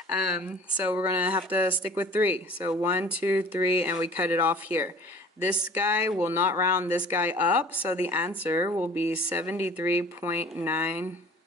So we're going to have to stick with 3. So 1, 2, 3, and we cut it off here. This guy will not round this guy up, so the answer will be 399.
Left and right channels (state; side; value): normal; both; correlation 0.47